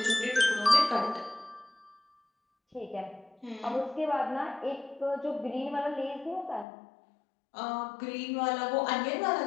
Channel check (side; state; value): right; drops out; at 6.7 s